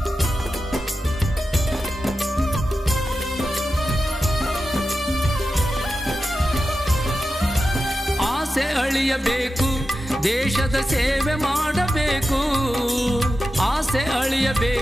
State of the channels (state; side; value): normal; both; correlation 0.92